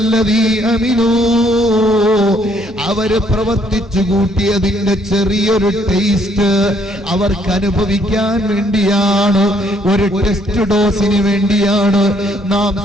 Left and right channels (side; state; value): both; normal; correlation 0.67